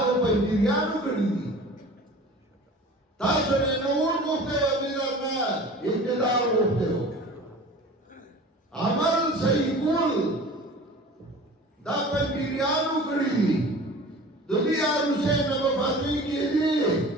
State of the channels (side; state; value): both; normal; correlation 0.41